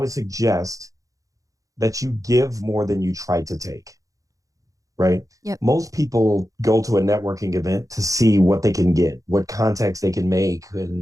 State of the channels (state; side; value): late; left; 0.16 ms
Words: that you give more than you try to take, right? Yep. Most people go to a networking event to see what they can get, what contacts they can make,